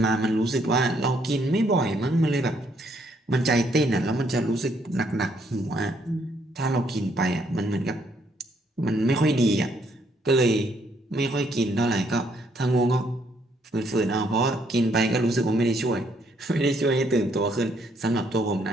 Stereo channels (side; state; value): both; normal; correlation 0.70